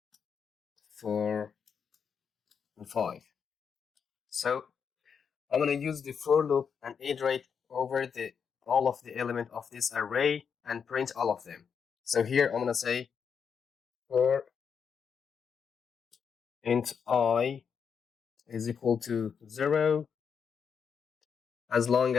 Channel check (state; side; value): quieter; right; 6.8 dB